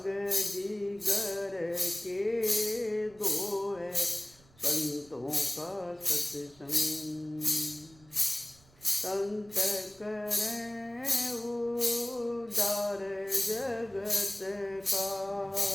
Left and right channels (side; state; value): right; noise; rumble, 27 dB below the sound